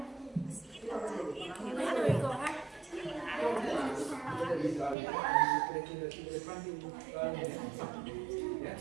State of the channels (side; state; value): left; drops out; at 5.0 s